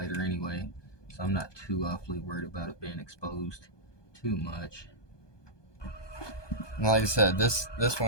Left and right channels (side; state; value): right; late; 1.2 ms